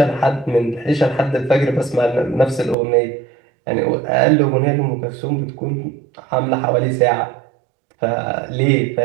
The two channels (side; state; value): left; drops out; at 2.8 s